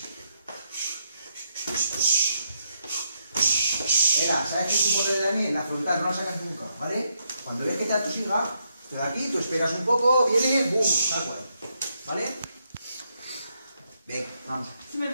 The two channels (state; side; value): inverted; both; correlation -0.78